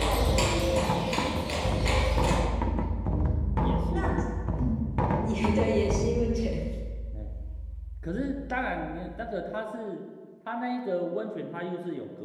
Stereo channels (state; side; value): identical; both; correlation 1.00